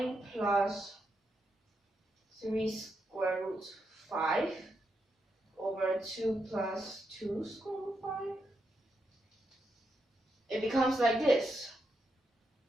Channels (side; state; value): both; normal; correlation 0.83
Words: plus 3 square root 5 over 2 plus 2 square root 5. It becomes like this.